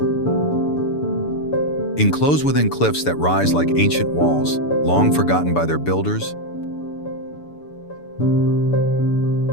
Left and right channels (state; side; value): late; right; 6.9 ms